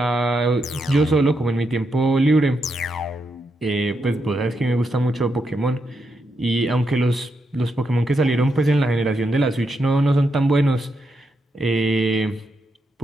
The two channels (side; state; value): both; normal; correlation 0.82